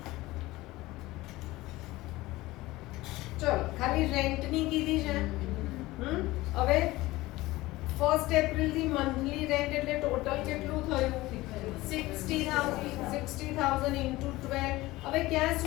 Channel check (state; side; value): quieter; right; 18.9 dB